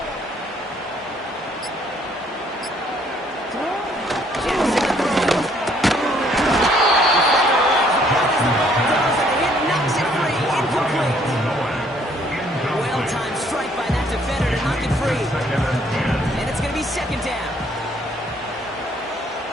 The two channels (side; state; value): both; normal; correlation 0.64